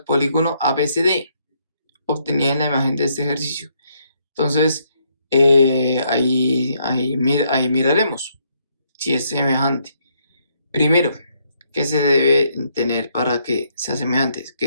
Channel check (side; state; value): both; inverted; correlation -0.73